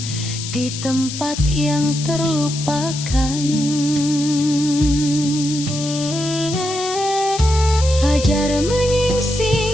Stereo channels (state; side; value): noise; left; hiss, 8 dB below the sound